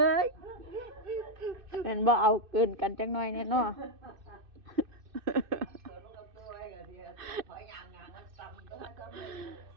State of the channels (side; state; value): left; late; 2.6 ms